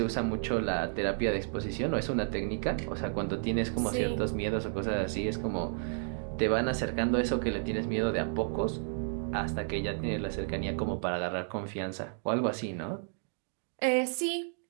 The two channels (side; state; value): left; silent; digital silence